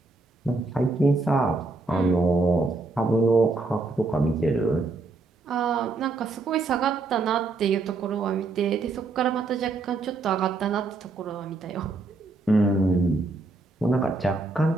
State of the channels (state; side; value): quieter; left; 3.5 dB